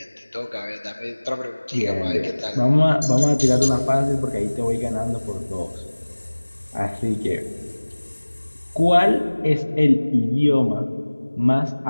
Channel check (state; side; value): inverted; both; correlation -1.00